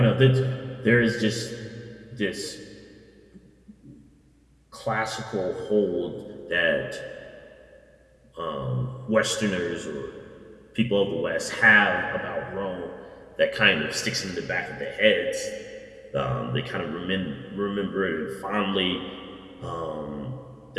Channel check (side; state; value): both; identical; correlation 1.00